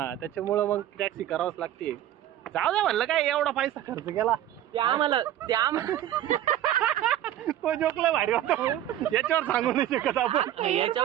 त्याच्यामुळं मग टॅक्सी करावंच लागते. जाऊ द्या म्हणलं, काय एवढा पैसा खर्च केला ते आम्हाला तो जोकला भारी होता. याच्यावर सांगू नाही शकत आपण,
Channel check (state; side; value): quieter; left; 12.2 dB